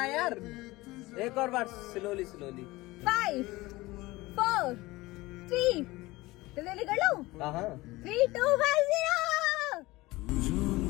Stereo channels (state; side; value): quieter; right; 20.1 dB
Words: है यार, एक और बार स्लोली 5 4 3 जल्दी कर लो। हाँ 3 2 1 0।